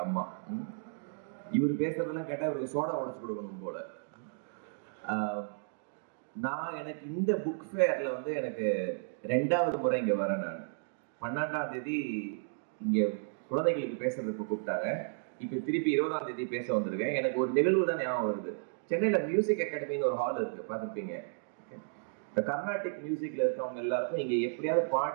அம்மா. இவர் பேசுறதெல்லாம் கேட்டா இவருக்கு சோடா உடைச்சு கொடுக்கணும் போல. நான் எனக்கு இந்த புக் ஃபேர்ல வந்து எனக்கு 2வது முறை இங்க வரேன். நான் 12ஆம் தேதி இங்க குழந்தைகளுக்கு பேசுறதுக்கு கூப்பிட்டாங்க. இப்ப திருப்பி 20ஆம் தேதி பேச வந்திருக்கேன். எனக்கு ஒரு நிகழ்வு தான் ஞாபகம் வருது. சென்னையில மியூசிக் அகாடமின்னு ஒரு ஹால் இருக்கு, பார்த்துருப்பீங்க. இந்த கர்நாடிக் மியூசிக்ல இருக்கவங்க எல்லாருக்கும் இங்க எப்படியாவது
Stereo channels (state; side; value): silent; left; digital silence